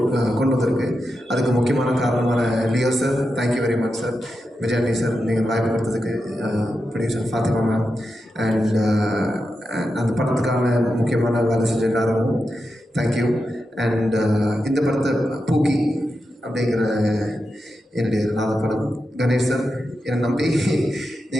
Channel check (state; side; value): normal; both; correlation 0.89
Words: கொண்டு வந்திருக்கு. அதுக்கு முக்கியமான காரணமான Leo sir, thank you very much sir. Vijayani sir, நீங்கள் வாய்ப்பு கொடுத்ததுக்கு. ப்ரொடியூசர் ஃபாத்திமா மேம், அண்ட் அந்த படத்துக்கான முக்கியமான வேலை செஞ்ச எல்லாரும் தேங்க்யூ. அண்ட் இந்த படத்தை பூக்கி அப்படிங்கிற என்னுடைய 4வது படம் கணேஷ் சார் என்னை நம்பி